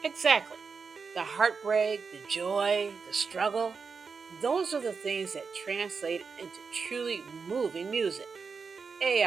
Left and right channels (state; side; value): quieter; left; 5.2 dB